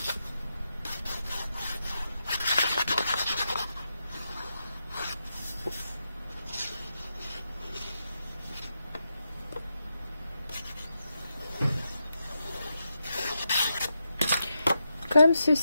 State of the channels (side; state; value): both; inverted; correlation -0.86